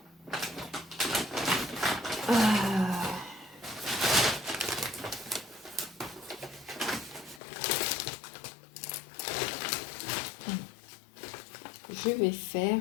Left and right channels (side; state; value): right; drops out; at 7.4 s